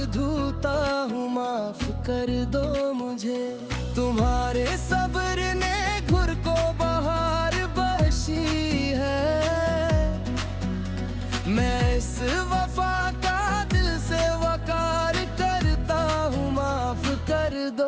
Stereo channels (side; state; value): both; identical; correlation 1.00